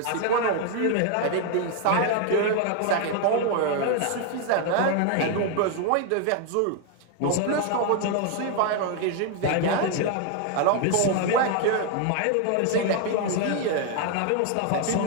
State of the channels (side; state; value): both; different; correlation 0.01